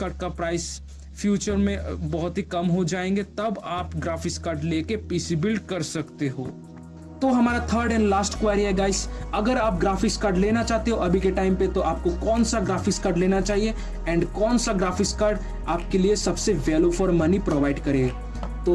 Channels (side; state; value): both; identical; correlation 1.00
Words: का प्राइस फ्यूचर में बहुत ही कम हो जाएंगे तब आप ग्राफिक्स कार्ड लेके पीसी बिल्ड कर सकते हो। तो हमारा थर्ड एंड लास्ट क्वेरी है गाइस, अगर आप ग्राफिक्स कार्ड लेना चाहते हो अभी के टाइम पे तो आपको कौन सा ग्राफिक्स कार्ड लेना चाहिए एंड कौन सा ग्राफिक्स कार्ड आपके लिए सबसे वैल्यू फॉर मनी प्रोवाइड करेगा।